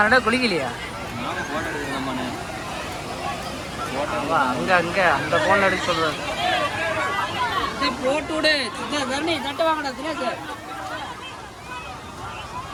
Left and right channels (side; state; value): both; identical; correlation 1.00